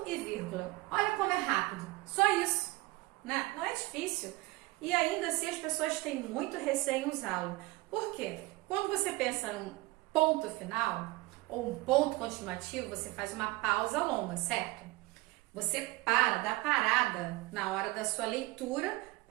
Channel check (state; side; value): quieter; left; 21.3 dB